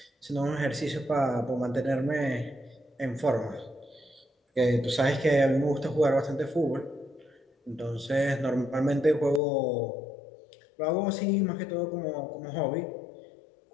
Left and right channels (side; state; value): right; drops out; at 9.4 s